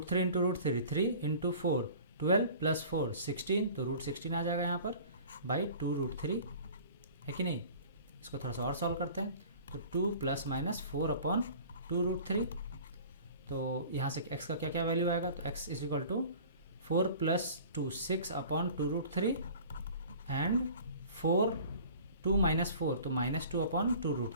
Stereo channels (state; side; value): inverted; both; correlation -0.45